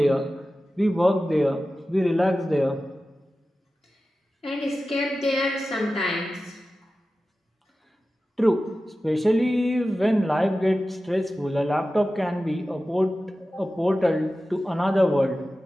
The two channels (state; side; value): normal; both; correlation 0.94